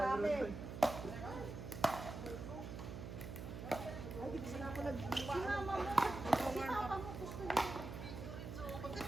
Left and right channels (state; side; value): noise; right; hum, 7 dB below the sound